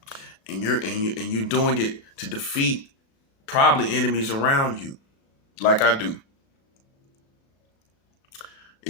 and you're doing it to defeat probably enemies around you, like I do.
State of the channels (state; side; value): late; right; 36 ms